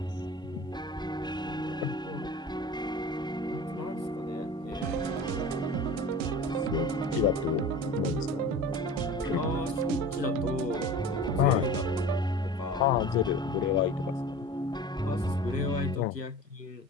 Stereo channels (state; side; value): normal; both; correlation 0.37